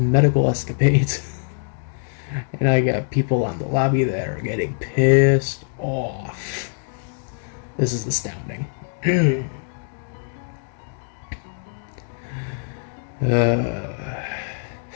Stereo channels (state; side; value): silent; right; digital silence